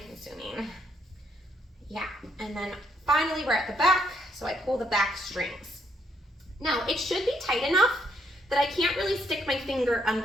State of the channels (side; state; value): both; normal; correlation 0.73